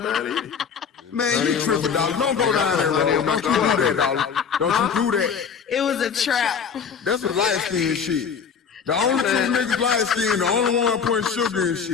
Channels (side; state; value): right; quieter; 6.6 dB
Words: bad either. Man, you tripping, dog. Don't go down that road. Don't you do that, dog. Don't you do that. It was a trap. That's some light skin shit. The only two niggas light skin, the only one putting sugar in